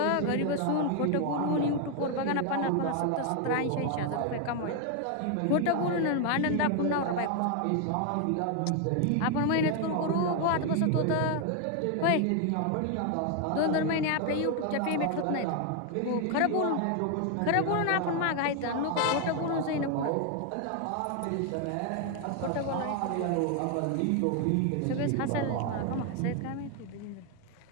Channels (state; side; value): different; both; correlation 0.01